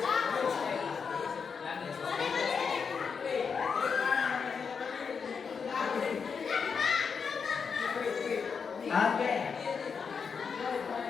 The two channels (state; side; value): quieter; right; 5.9 dB